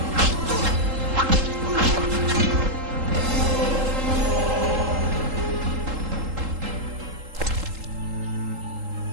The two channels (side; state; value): left; late; 3.8 ms